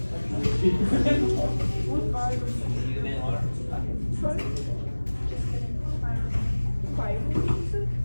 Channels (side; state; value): both; inverted; correlation -1.00